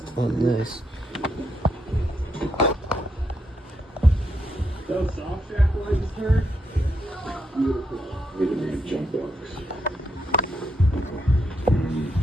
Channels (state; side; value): normal; both; correlation 0.79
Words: on this. Those soft shack I just heard. Beautiful. We didn't need jump box.